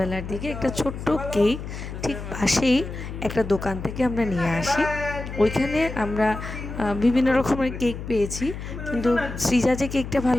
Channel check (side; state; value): left; noise; hum, 9 dB below the sound